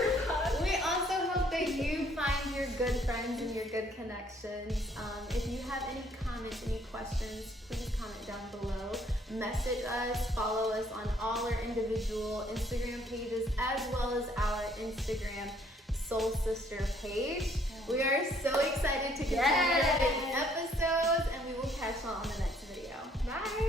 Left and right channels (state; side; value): normal; both; correlation 0.63